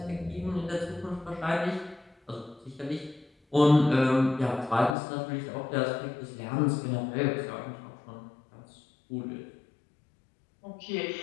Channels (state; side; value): drops out; right; at 5.0 s